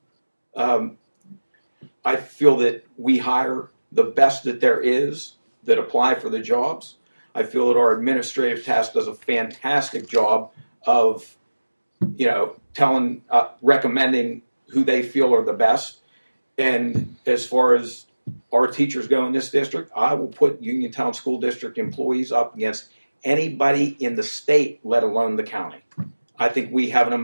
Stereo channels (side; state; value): both; inverted; correlation -1.00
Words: I feel that we hire the best that there is that apply for the jobs. I feel that our administrative task does a fantastic job of, recommending who they feel are the best. And as far as our teachers go in this district, I will put Uniontown School District employees up against anybody in the state, let alone the county. I think we have an